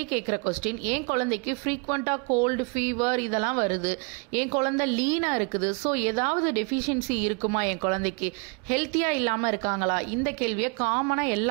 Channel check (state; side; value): quieter; left; 32.5 dB